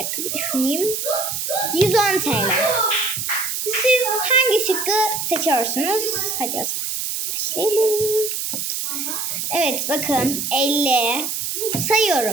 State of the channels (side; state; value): right; noise; hiss, 3 dB below the sound